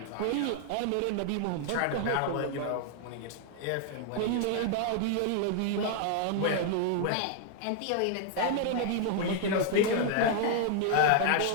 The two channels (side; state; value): both; different; correlation 0.00